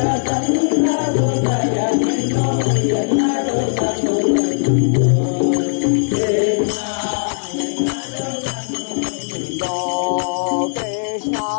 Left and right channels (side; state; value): right; silent; digital silence